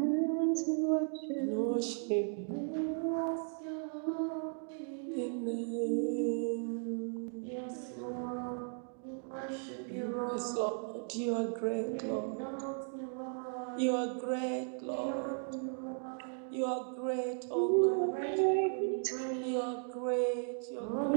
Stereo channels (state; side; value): silent; left; 54 dB below the other